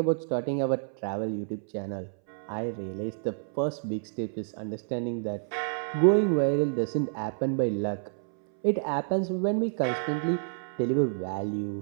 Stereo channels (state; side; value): silent; left; 59 dB below the other